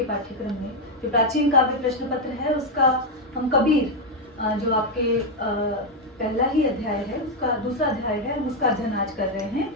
पाठ्यक्रम में जो प्राचीन काव्य प्रश्न पत्र है उसका हम कबीर जो आपके पहला ही अध्याय है उसका दूसरा अध्याय है, हम उसका अध्ययन आज कर रहे हैं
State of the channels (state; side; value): normal; both; correlation 0.04